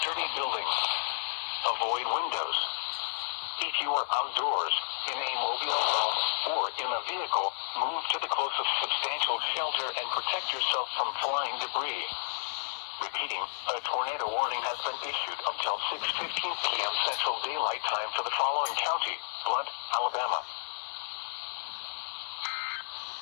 building. Avoid windows. If you are outdoors, in a mobile home, or in a vehicle, move to the closest substantial shelter and protect yourself from flying debris. Repeating, a tornado warning has been issued until 6:15 p.m. Central Daylight Time for the following county, Blunt, Alabama.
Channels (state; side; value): silent; right; 57 dB below the other